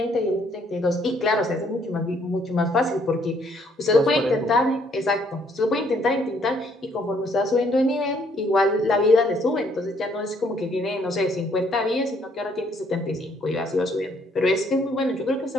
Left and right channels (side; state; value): both; normal; correlation 0.67